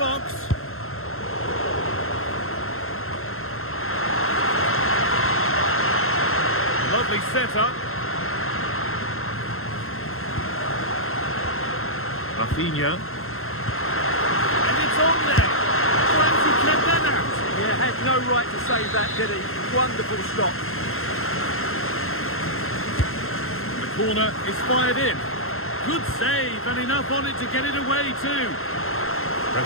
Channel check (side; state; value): right; late; 0.61 ms